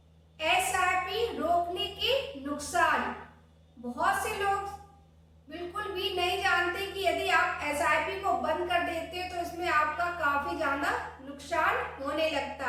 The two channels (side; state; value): both; identical; correlation 1.00